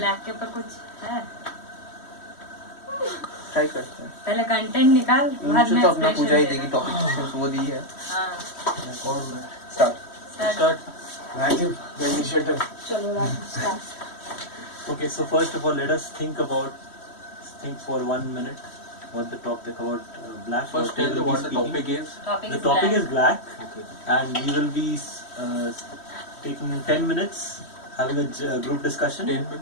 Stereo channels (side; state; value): right; late; 3.1 ms